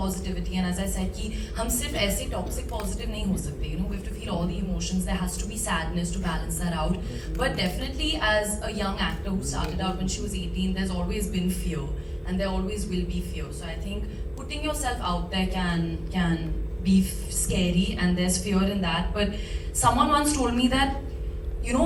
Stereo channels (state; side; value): identical; both; correlation 1.00